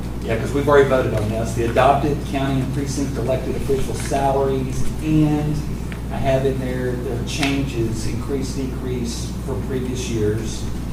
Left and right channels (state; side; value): identical; both; correlation 1.00